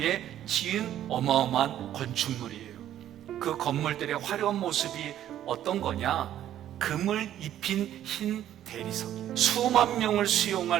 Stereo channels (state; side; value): quieter; left; 11.6 dB